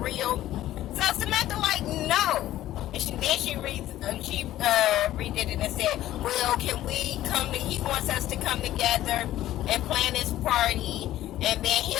So Samantha like, no. And she redid it and said, well, can we he wants us to come together and plan this party, and then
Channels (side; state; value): right; quieter; 13.9 dB